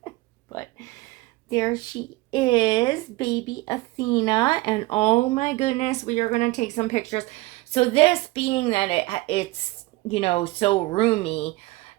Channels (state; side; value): quieter; left; 21.1 dB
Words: But there she is, baby Athena. And oh my goodness, we are going to take some pictures. So this, being that it's, you know, so roomy,